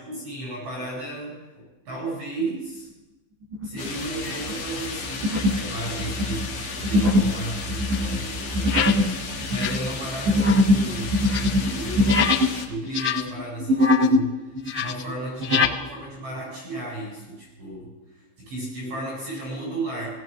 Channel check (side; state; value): left; late; 15 ms